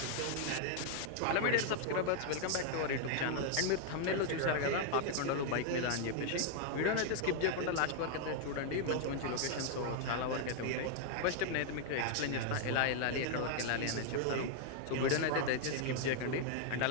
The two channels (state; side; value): different; both; correlation 0.00